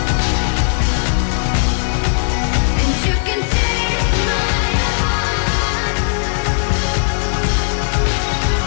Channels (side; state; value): right; silent; digital silence